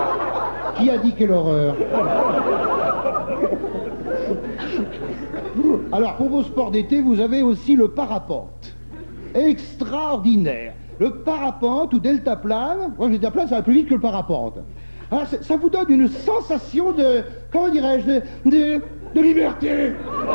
Qui a dit quelle horreur? Alors, pour vos sports d'été, vous avez aussi le parapente. Extraordinaire. Le parapente ou deltaplane, moi le deltaplane ça va plus vite que le parapente. Ah, ça vous donne une sensation de, comment dirais-je, de liberté.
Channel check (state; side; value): inverted; both; correlation -1.00